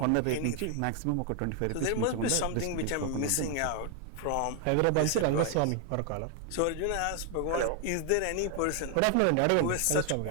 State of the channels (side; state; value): both; different; correlation 0.00